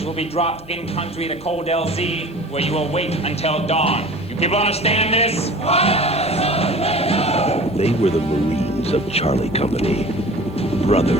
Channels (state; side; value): normal; both; correlation 0.42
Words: will be dropped in country to Cold LZ, where you will wait until dawn. You people understand this? They were the Marines of Charlie Company,